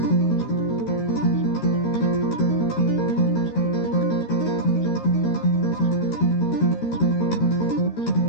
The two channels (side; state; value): right; late; 13 ms